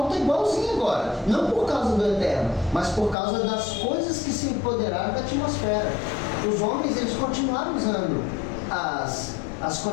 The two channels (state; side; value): drops out; right; at 3.2 s